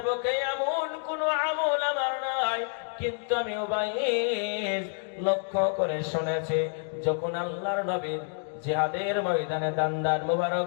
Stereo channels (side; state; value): right; silent; 59 dB below the other